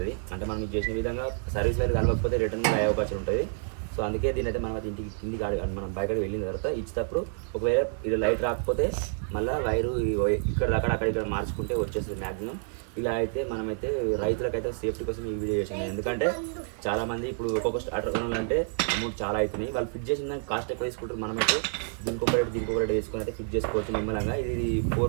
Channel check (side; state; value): left; silent; 59 dB below the other